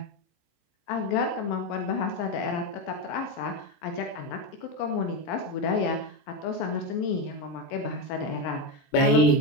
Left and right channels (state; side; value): late; right; 24 ms